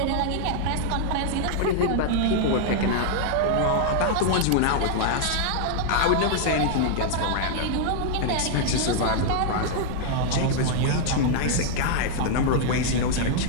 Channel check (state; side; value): different; both; correlation -0.01